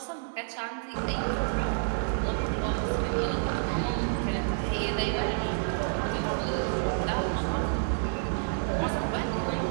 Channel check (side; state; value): left; silent; digital silence